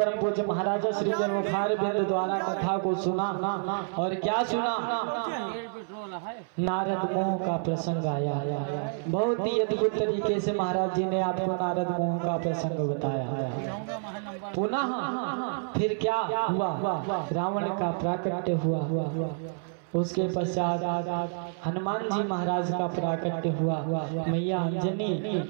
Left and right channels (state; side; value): silent; left; 59 dB below the other